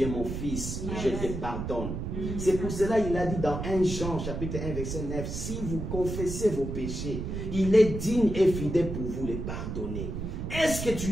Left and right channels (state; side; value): noise; right; rumble, 5 dB below the sound